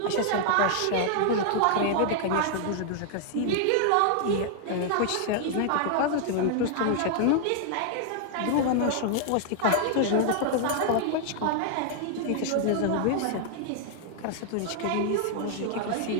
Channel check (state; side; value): different; both; correlation -0.01